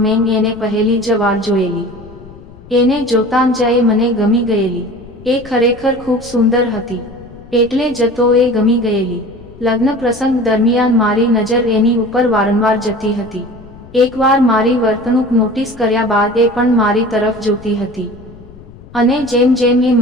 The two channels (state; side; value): noise; left; rumble, 20 dB below the sound